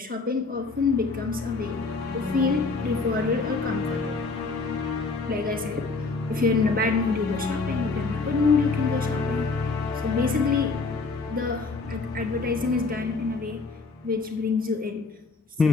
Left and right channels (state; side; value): quieter; right; 4.0 dB